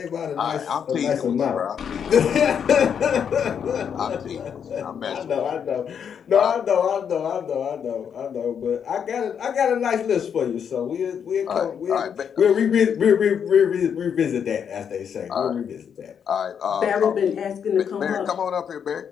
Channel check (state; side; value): quieter; right; 7.7 dB